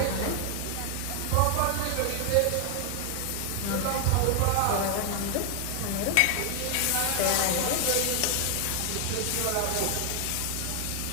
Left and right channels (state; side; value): different; both; correlation 0.00